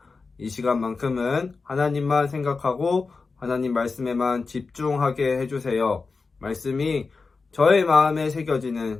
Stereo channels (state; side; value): quieter; right; 4.3 dB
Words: 이 시간만큼은 하나님만 생각하고 하나님 말씀에만 집중하게 해주세요. 말씀이 저의 마음에